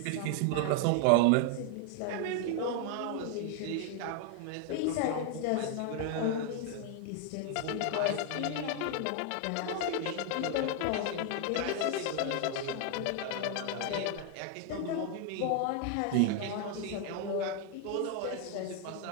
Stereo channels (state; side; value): different; both; correlation 0.00